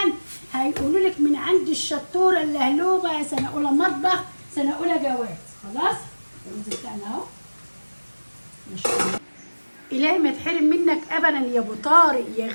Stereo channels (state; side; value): inverted; both; correlation -1.00